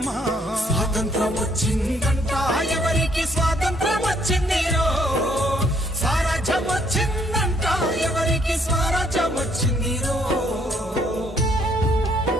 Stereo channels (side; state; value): both; normal; correlation 0.67